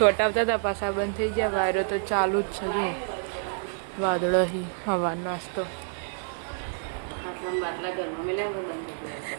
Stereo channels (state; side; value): silent; left; digital silence